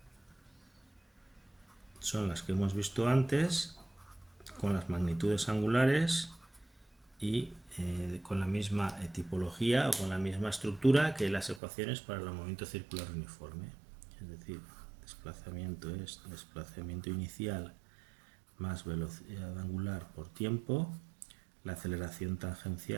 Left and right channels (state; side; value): drops out; left; at 11.6 s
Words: son las que hemos visto antes, con las magnitudes angulares y con la misma tipología o con la misma estructura que las ecuaciones para el movimiento circular uniforme. Es decir, desplazamiento es desplazamiento inicial más velocidad angular por tiempo. La aceleración